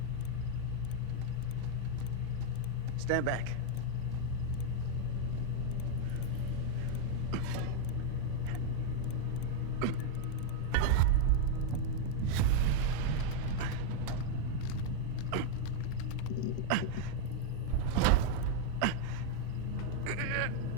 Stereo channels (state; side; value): different; both; correlation 0.00